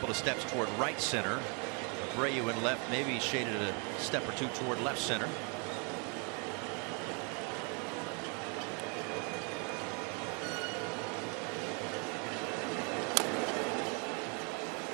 of steps toward right center. Abreu in left, maybe shaded a step or two toward left center.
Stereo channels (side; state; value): left; quieter; 35.8 dB